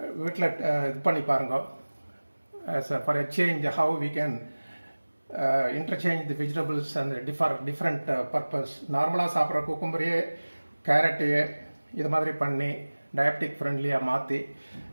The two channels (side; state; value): both; inverted; correlation -1.00